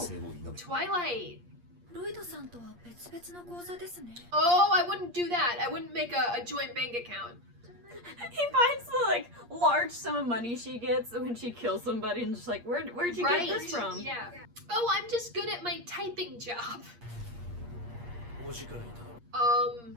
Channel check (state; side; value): late; left; 8.5 ms